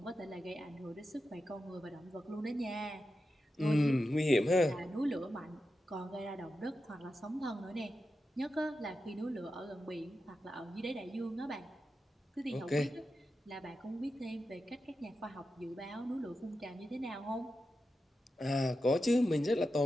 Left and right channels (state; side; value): normal; both; correlation 0.90